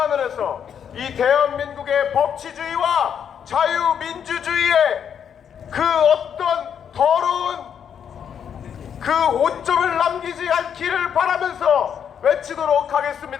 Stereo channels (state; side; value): quieter; right; 8.1 dB